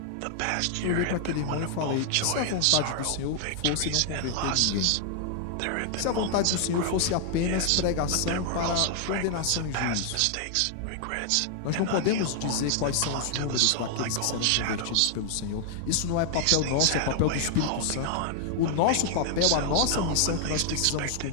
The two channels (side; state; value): both; different; correlation 0.00